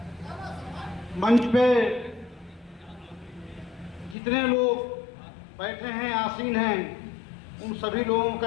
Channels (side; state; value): right; drops out; at 4.2 s